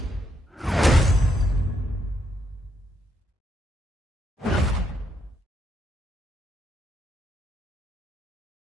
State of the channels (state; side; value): normal; both; correlation 0.77